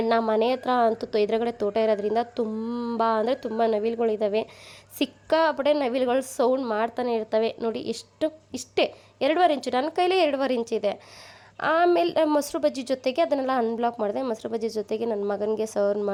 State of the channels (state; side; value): identical; both; correlation 1.00